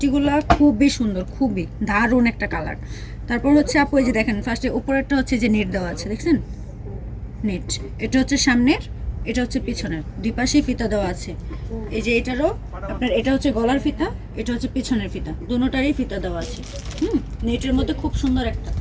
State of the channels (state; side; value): identical; both; correlation 1.00